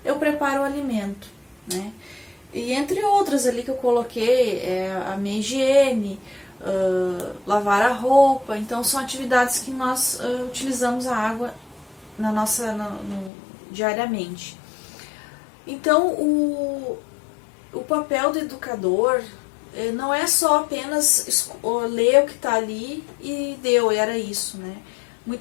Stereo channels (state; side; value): drops out; right; at 13.3 s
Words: Eu preparo o alimento, né, e entre outras ali que eu coloquei, a minha higiene, lavar a roupa. Então são atividades que nós utilizamos a água diariamente. Então o papel do educador não é só apenas ler o que está ali e deu, era isso, né?